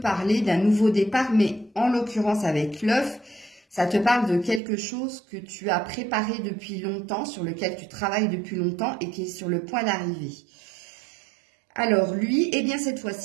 d'un nouveau départ, mais en l'occurrence avec l'œuf, ça te parle de quelque chose que tu as préparé depuis longtemps, sur lequel tu travailles depuis longtemps et qui est sur le point d'arriver. Alors lui, eh bien cette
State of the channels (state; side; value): drops out; left; at 4.6 s